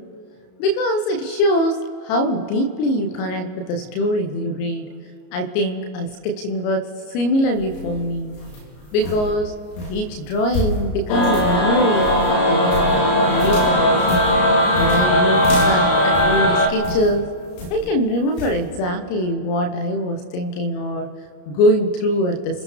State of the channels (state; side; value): late; right; 33 ms